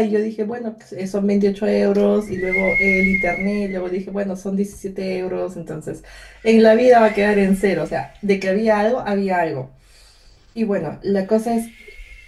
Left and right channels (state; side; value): identical; both; correlation 1.00